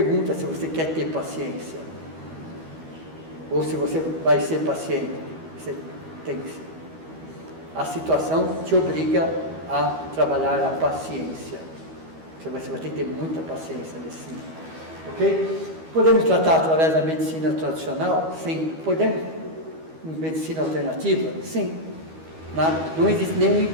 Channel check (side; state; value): left; late; 12 ms